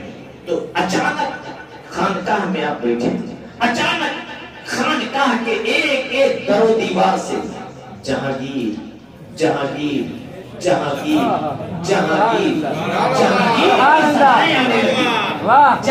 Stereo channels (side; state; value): both; identical; correlation 1.00